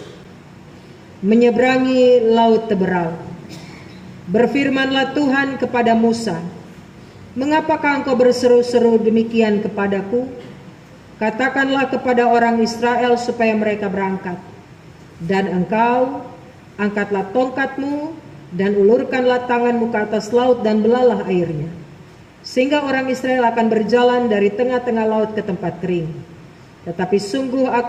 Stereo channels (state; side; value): identical; both; correlation 1.00